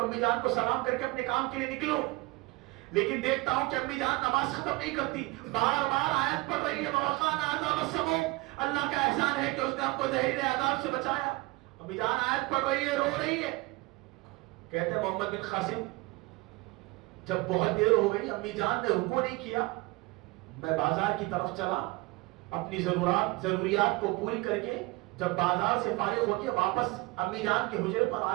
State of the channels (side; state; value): left; quieter; 23.1 dB